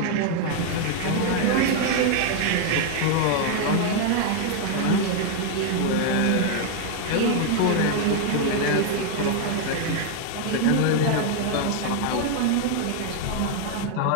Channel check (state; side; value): different; both; correlation 0.00